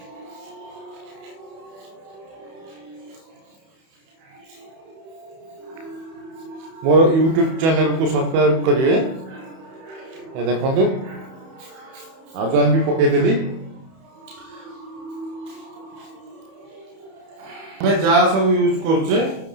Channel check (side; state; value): left; late; 31 ms